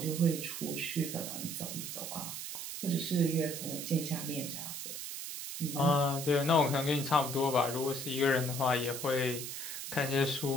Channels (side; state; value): right; noise; hiss, 6 dB below the sound